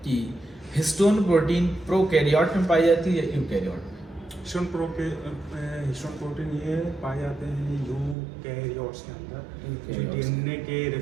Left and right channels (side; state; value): left; drops out; at 8.2 s